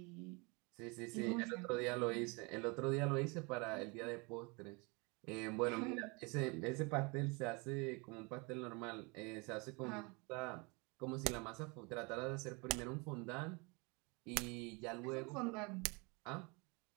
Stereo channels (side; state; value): left; quieter; 29.3 dB